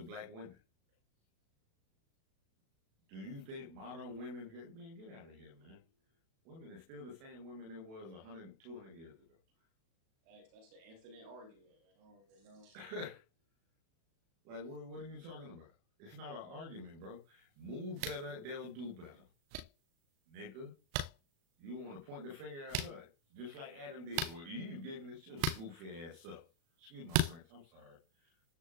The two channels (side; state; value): left; late; 36 ms